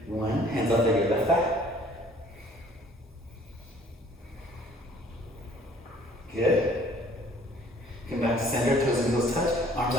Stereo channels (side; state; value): both; normal; correlation 0.56